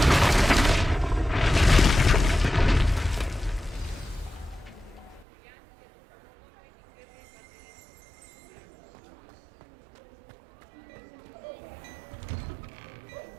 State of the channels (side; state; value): left; drops out; at 5.2 s